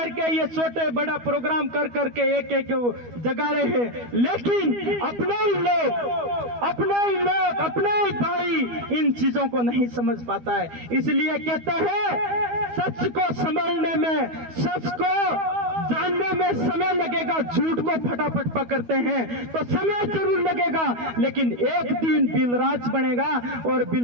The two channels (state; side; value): late; left; 12 ms